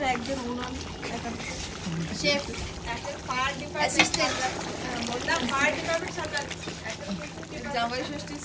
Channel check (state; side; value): identical; both; correlation 1.00